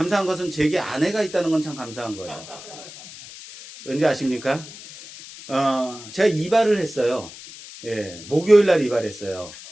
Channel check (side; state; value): left; noise; hiss, 15 dB below the sound